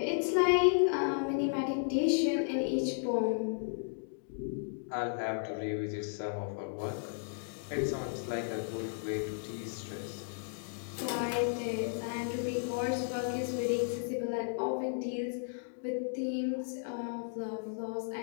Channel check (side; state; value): right; silent; digital silence